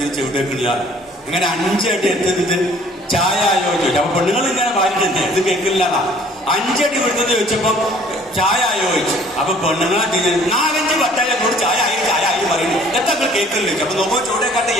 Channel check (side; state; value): both; normal; correlation 0.56